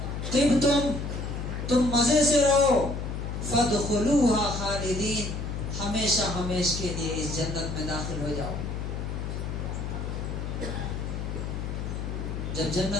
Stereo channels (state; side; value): noise; left; hum, 4 dB below the sound